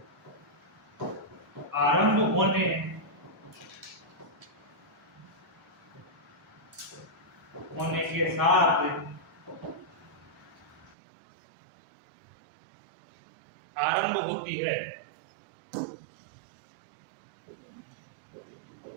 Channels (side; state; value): left; drops out; at 11.0 s